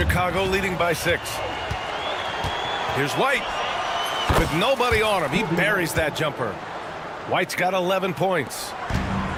leading by 6. Here's White. With nobody on him, he buries that jumper. White's got 11 points.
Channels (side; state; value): both; identical; correlation 1.00